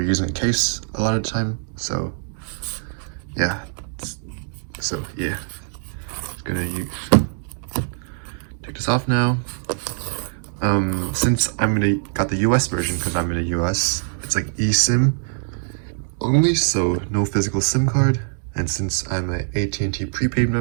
using a case a lot of the time. So yeah, gonna take this off now. Since got the US version because I'm in the US, it's like eSIM only, so no physical SIM card. And since I'm an AT&T prepaid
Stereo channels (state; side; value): silent; left; 64 dB below the other